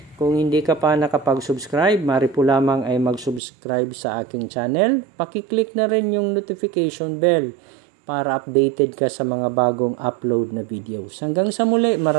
Kung hindi ka pa nakapag-subscribe, maaari po lamang ay mag-subscribe sa aking channel. Paki-click na rin yung notification bell para updated ka sa mga bagong upload na videos. Hanggang sa muli,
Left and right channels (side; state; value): left; drops out; at 3.4 s